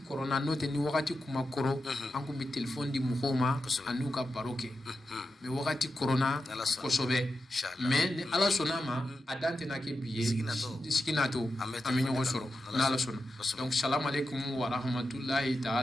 n'o tɛ ni wagati kuma kɔrɔ an kun bɛ telefɔni di mɔgɔw ma an'u ka baro kɛ mais wagati kɔrɔna kosɛbɛ mais ni ala sɔnna ma a dan tɛna kɛ bi ye sigi nato an bɛ ɲɔgɔn sɔrɔ n'ala sɔnna donc salam alaikum wa rahmatulahi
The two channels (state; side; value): normal; both; correlation 0.89